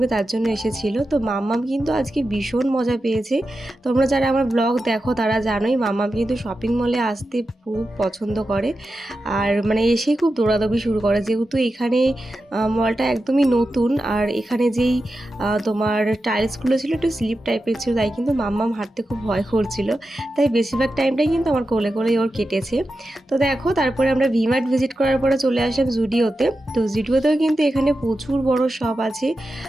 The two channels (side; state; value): both; normal; correlation 0.91